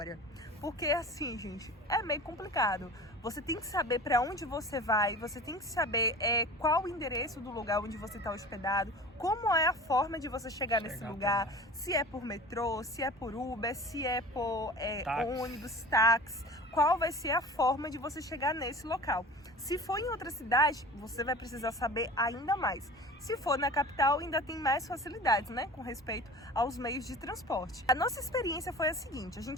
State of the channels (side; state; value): both; normal; correlation 0.38